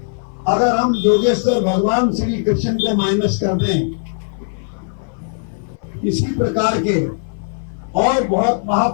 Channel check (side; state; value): right; silent; 60 dB below the other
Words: अगर हम योगेश्वर भगवान श्री कृष्ण को माइनस कर दें, इसी प्रकार के और बहुत